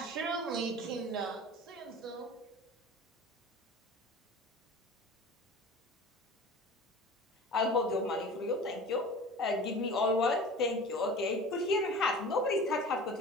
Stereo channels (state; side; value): normal; both; correlation 0.38